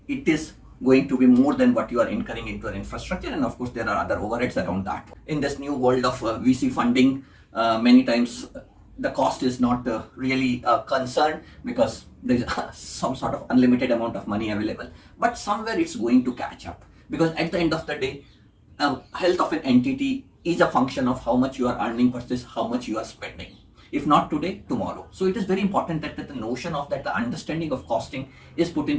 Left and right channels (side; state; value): both; identical; correlation 1.00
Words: it is going to be more than what you are incurring into your infrastructure. And of course, there are other overheads around that. In this new world of VC funding, many times the cost is not really a concern because there's some sort of unlimited amount of money available. But somewhere it's going to catch up, because at the end of the day, health of an entity is a function of how much you are earning versus how much you are spending. If not today, tomorrow. So it is very important that the notion of that, the understanding of costing is put